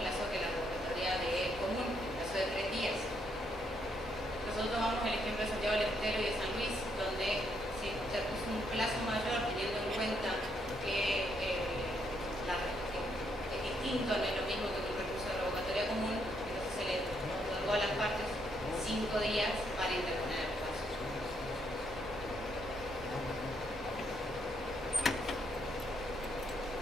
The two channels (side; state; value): both; normal; correlation 0.74